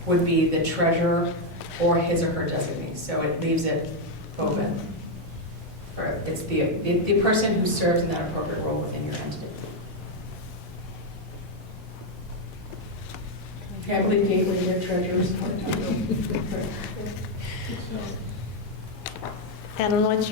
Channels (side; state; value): both; normal; correlation 0.02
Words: would be the treasurer or his or her designee. So it leaves it open. It's the person who serves in that appropriate role within your entity. I believe Gateway, their treasurers. Adam, what's